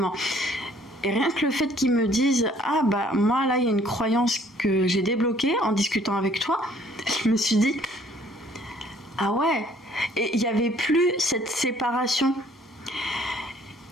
Et rien que le fait qu'ils me disent « Ah bah moi là il y a une croyance que j'ai débloquée en discutant avec toi », je me suis dit « Ah ouais !» Et il n'y avait plus cette séparation.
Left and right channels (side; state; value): both; normal; correlation 0.59